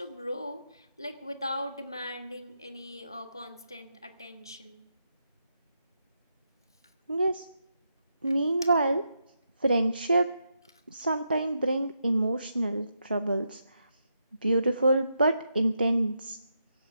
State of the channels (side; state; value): both; inverted; correlation -0.83